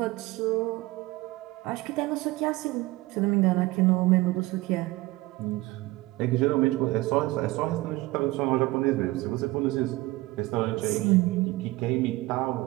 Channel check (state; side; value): quieter; left; 20.1 dB